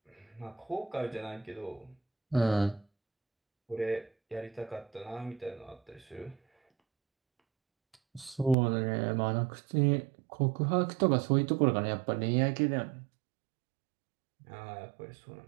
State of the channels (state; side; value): drops out; left; at 8.6 s